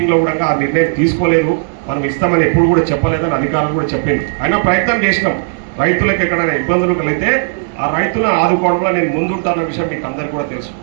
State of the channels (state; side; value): silent; left; digital silence